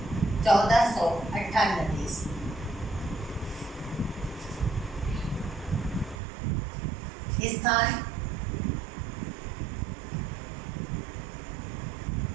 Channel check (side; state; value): left; drops out; at 6.2 s